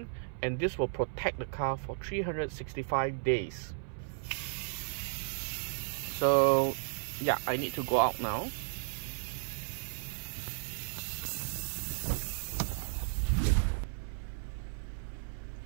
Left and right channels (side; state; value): left; silent; 55 dB below the other